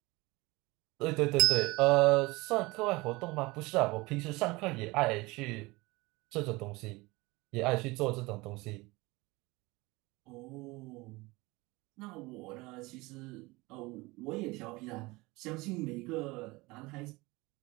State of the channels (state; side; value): quieter; left; 22.8 dB